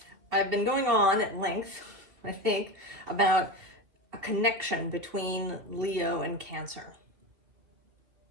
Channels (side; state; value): left; late; 2.7 ms